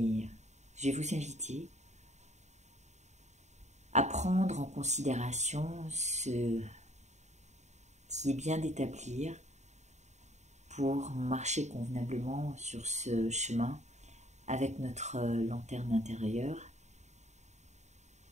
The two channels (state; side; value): late; left; 0.33 ms